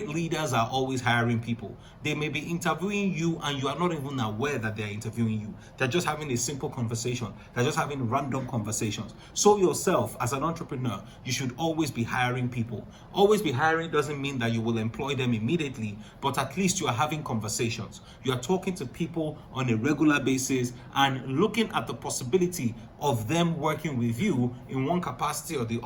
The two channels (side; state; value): both; identical; correlation 1.00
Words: leaders are always hiring people. They may be interviewing you and you are not even aware that they're interviewing you. They're just having a simple conversation. They're just having random conversations. So yourself, as an entrepreneur, you should always be hiring people. Always be hiring doesn't mean that you will employ them immediately, but at least you are having conversations. You are talking to people on a regular basis and looking at the possibility of them working with you in one capacity or the